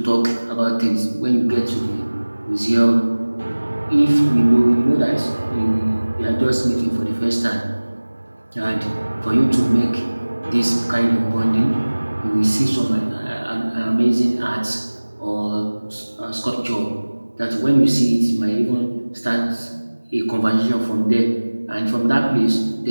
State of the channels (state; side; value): inverted; both; correlation -1.00